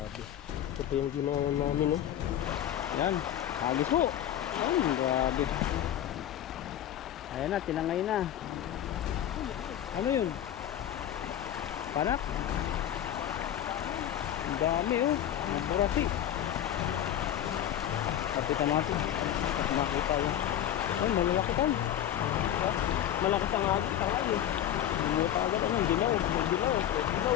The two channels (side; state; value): right; quieter; 11.0 dB